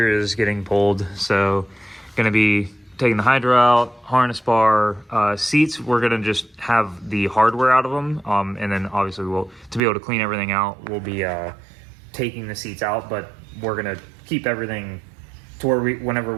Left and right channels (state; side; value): drops out; left; at 9.8 s